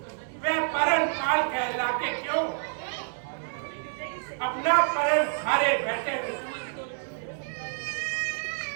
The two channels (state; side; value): silent; left; digital silence